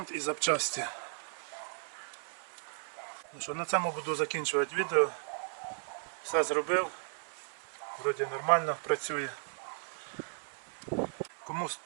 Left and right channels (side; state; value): left; silent; 54 dB below the other